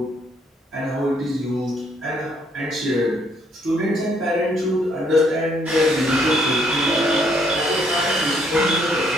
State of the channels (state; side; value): normal; both; correlation 0.69